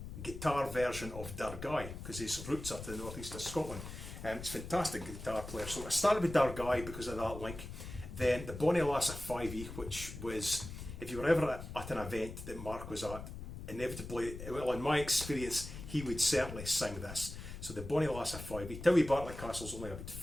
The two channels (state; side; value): noise; left; rumble, 10 dB below the sound